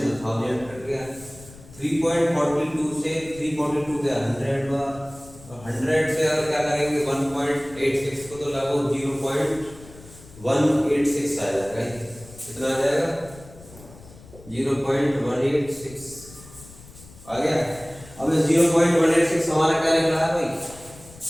1000 कट गया, 3.42 से 342 गया 100 बार, और 100 से अगर क्या करेंगे 1.86 को तो लगो 0.186 आ जाएगा। कितना आ जाएगा 0.186 आ गया। अब 0.186 हमारा क्या निकला है भाई,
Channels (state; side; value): noise; left; rumble, 20 dB below the sound